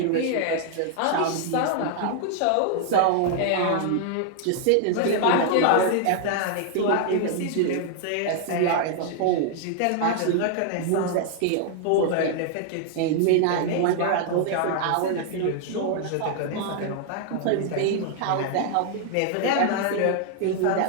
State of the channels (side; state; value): both; different; correlation 0.00